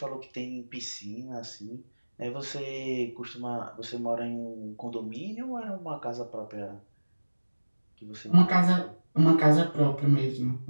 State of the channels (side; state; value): both; inverted; correlation -1.00